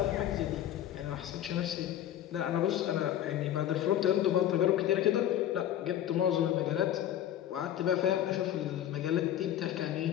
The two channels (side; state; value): right; quieter; 11.5 dB